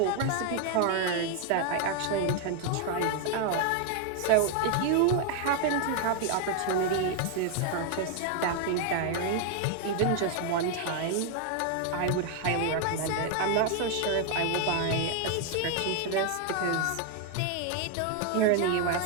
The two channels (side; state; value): both; different; correlation 0.01